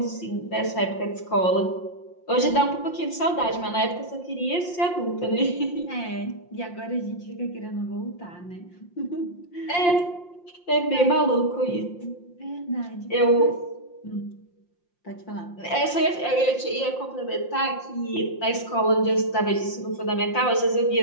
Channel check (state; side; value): late; right; 5.7 ms